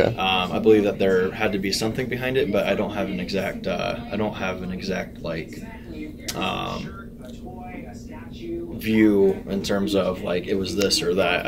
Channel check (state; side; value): identical; both; correlation 1.00